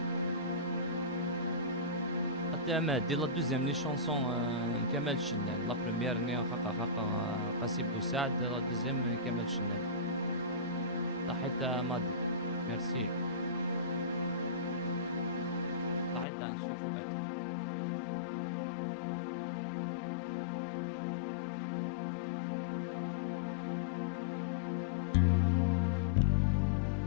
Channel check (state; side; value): drops out; right; at 16.2 s